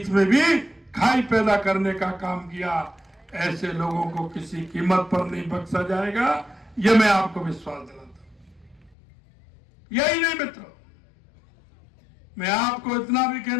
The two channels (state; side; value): drops out; right; at 9.0 s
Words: में भी खाई पैदा करने का काम किया। ऐसे लोगों को किसी कीमत पर नहीं बख्शा जाएगा, यह मैं आपको विश्वास दिलाता हूं। यही नहीं मित्रों, मैं आपको इतना भी